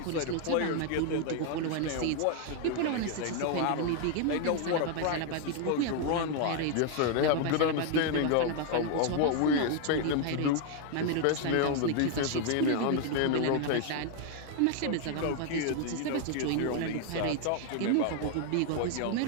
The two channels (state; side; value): different; both; correlation 0.00